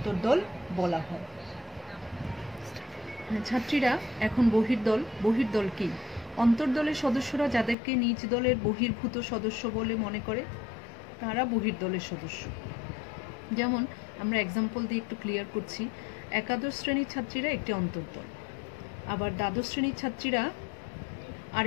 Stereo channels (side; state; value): right; drops out; at 7.8 s